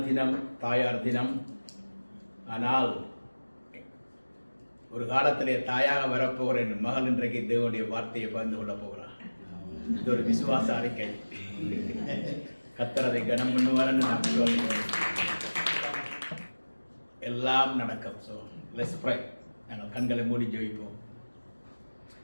தினம், தாயார் தினம். ஆனால் ஒரு காலத்திலே தாயாக வரப்போகிற என் மகள் இன்றைக்கு தேவனுடைய வார்த்தையை பகிர்ந்து கொள்ள போகிறார். இது ஒரு விசுவாச அறிக்கை. கர்த்தர் அதை கனம் பண்ணுவார்னு நான் சொல்கிறேன். எல்லாம் நடக்கும். So let's pray. நாங்கள் கண்களை மூடி ஜெபிப்போம்.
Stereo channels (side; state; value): both; inverted; correlation -1.00